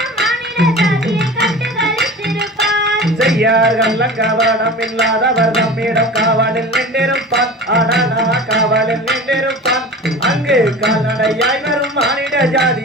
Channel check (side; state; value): both; normal; correlation 0.35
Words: செய்யார்கள் கவனம் இல்லாதவர் நம்மிடம் காவலில் நின்றிருப்பான் ஆனா காவலில் நின்றிருப்பான் அங்கு கால்நடையாய் வரும் மானிட